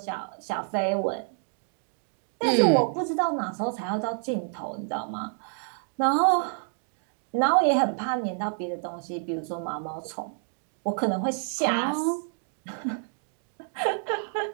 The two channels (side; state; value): left; silent; 59 dB below the other